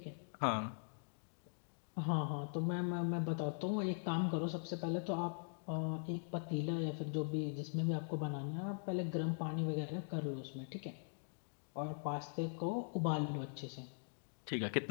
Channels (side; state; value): right; silent; digital silence